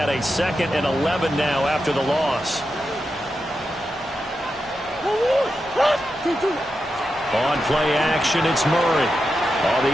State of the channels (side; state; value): left; noise; rumble, 24 dB below the sound